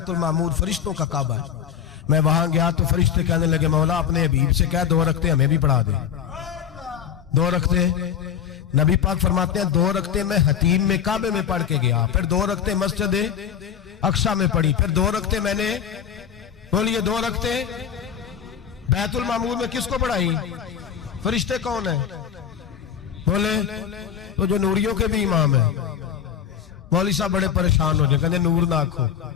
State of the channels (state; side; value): quieter; right; 8.6 dB